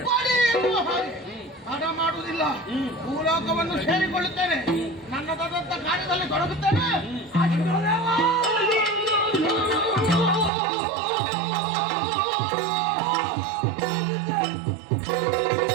ಕೊಡಿ ಎನ್ನುವ ಹಾಗೆ ತಡ ಮಾಡುವುದಿಲ್ಲ. ಭೂಲೋಕವನ್ನು ಸೇರಿಕೊಳ್ಳುತ್ತೇನೆ, ನನ್ನದಾದಂತ ಕಾರ್ಯದಲ್ಲಿ ತೊಡಗುತ್ತೇನೆ.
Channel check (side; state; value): left; drops out; at 10.5 s